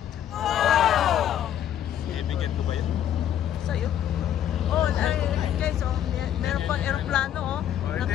Wow! Kaibigan ko ba yun? Sa'yo? Oh, guys, oh, meron pang aeroplano, oh.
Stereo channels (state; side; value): quieter; right; 10.6 dB